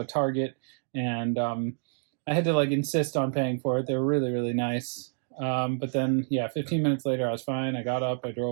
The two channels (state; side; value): silent; left; digital silence